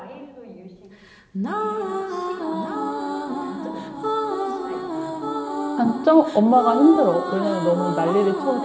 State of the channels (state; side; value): identical; both; correlation 1.00